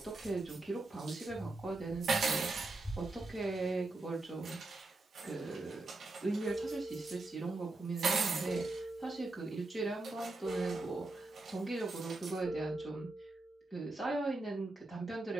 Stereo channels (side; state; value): left; quieter; 3.0 dB